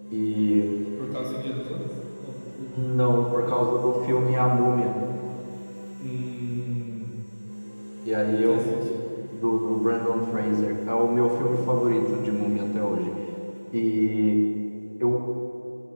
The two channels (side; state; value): both; inverted; correlation -1.00